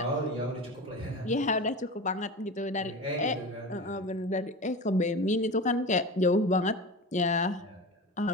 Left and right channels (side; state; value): both; normal; correlation 0.29